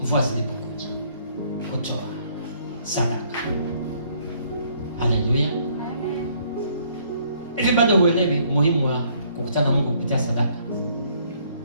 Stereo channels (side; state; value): both; inverted; correlation -0.65